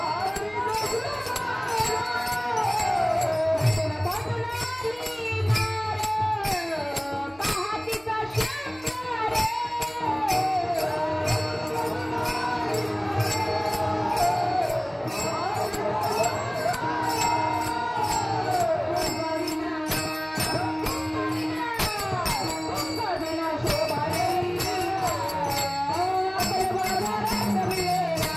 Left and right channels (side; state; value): right; noise; hum, 27 dB below the sound